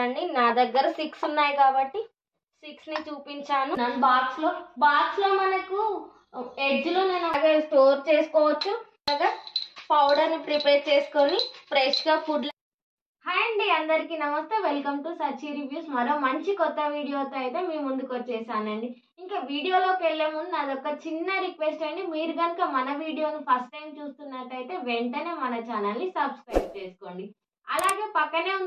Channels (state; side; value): identical; both; correlation 1.00